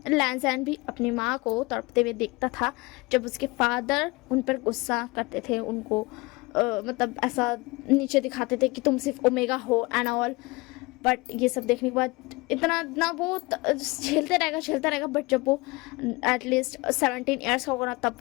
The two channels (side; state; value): right; quieter; 24.0 dB